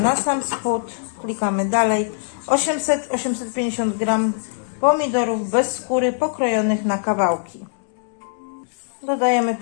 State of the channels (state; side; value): silent; right; digital silence